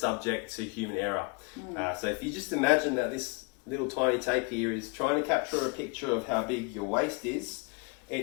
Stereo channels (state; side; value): quieter; right; 30.9 dB